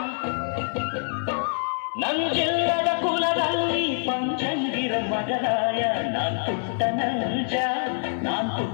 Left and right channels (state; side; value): silent; right; 59 dB below the other